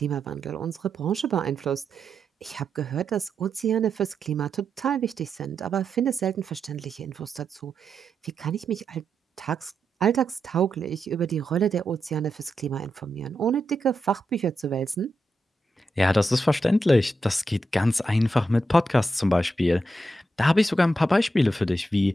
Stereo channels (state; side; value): normal; both; correlation 0.85